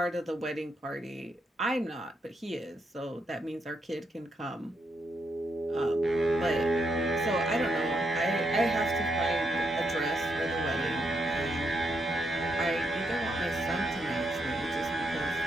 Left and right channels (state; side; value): normal; both; correlation 0.79